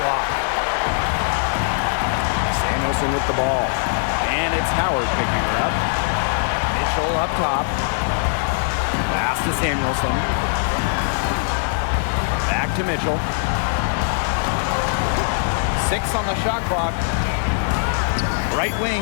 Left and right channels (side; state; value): right; silent; digital silence